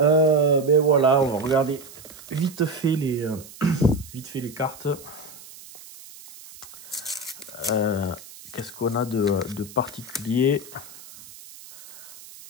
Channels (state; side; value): noise; right; hiss, 18 dB below the sound